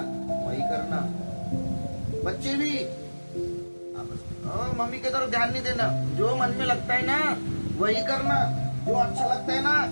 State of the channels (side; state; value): both; inverted; correlation -1.00